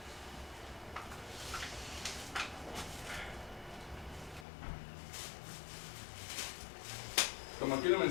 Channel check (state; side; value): drops out; right; at 4.5 s